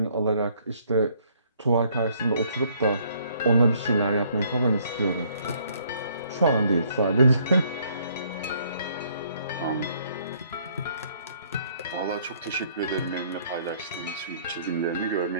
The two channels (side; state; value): both; inverted; correlation -0.64